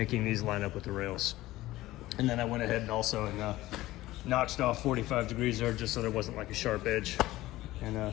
these line up with the rails. And then I went ahead and also notched off 45 degrees there just so there wasn't like a sharp edge. And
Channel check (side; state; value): right; quieter; 16.9 dB